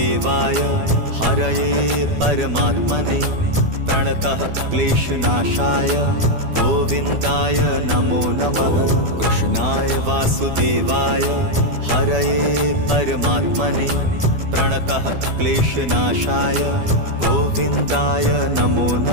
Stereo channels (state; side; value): late; left; 12 ms